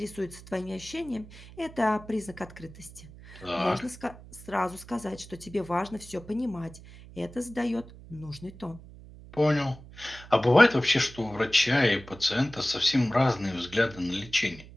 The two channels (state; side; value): noise; right; hum, 18 dB below the sound